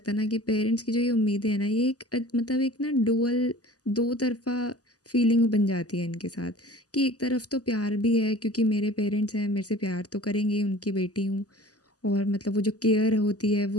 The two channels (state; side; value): late; right; 0.67 ms